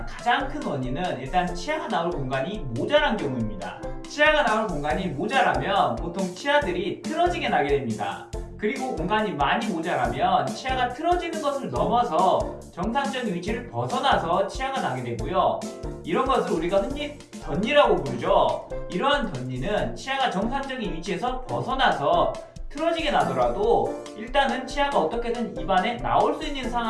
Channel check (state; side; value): identical; both; correlation 1.00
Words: 가장 큰 원인은 일단 치아가 나올 공간이 모자란 경우입니다. 치아가 나올 공간이 모자라면 보통 치아들이 틀어지게 나게 됩니다. 그리고 공간이 많이 모자라면 치아가 틀어지는 것을 넘어서 정상적인 위치를 벗어나서 치아가 나게 되고요. 이런 것을 우리가 흔히 덧니라고 부르죠. 이러한 덧니는 치아가 정상적인 위치에서 벗어나서 틀어지게 나더라도 일단은 치아가 어떻게든 입안에 나올 수 있는